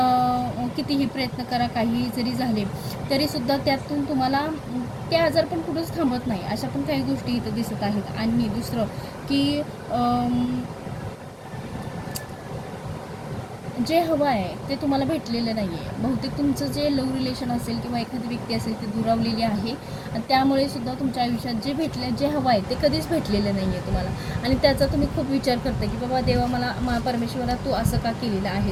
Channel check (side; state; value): both; identical; correlation 1.00